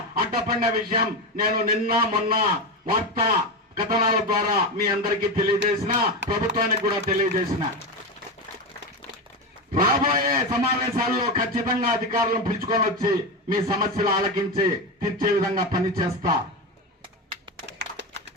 అడ్డపడిన విషయం నేను నిన్న మొన్న వార్తా కథనాల ద్వారా మీ అందరికీ తెలియజేసిన, ప్రభుత్వానికి కూడా తెలియజేసిన. రాబోయే సమావేశాల్లో ఖచ్చితంగా అధికారులను పిలుచుకొని వచ్చి మీ సమస్యలు ఆలకించి తీర్చే విధంగా పనిచేస్తా.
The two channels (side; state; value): both; normal; correlation 0.17